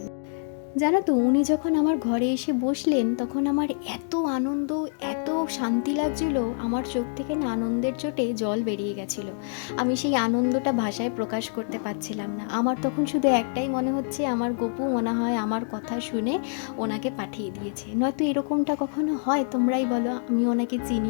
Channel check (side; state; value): right; silent; digital silence